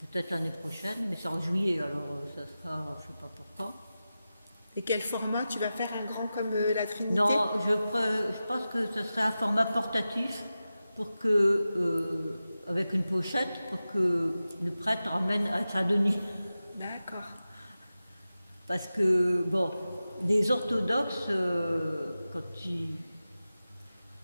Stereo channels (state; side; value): inverted; both; correlation -0.94